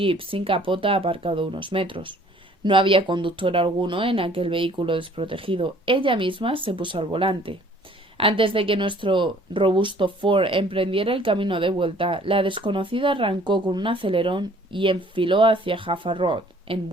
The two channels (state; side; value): normal; both; correlation 0.56